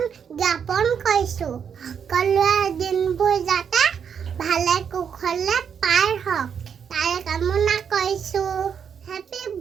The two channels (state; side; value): quieter; left; 7.4 dB